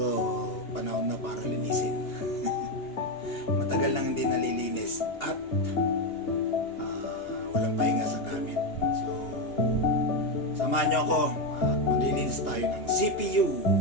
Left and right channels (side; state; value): right; late; 2.8 ms